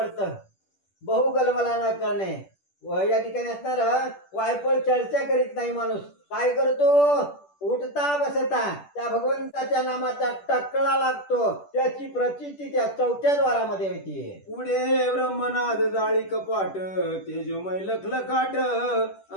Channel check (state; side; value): late; right; 10 ms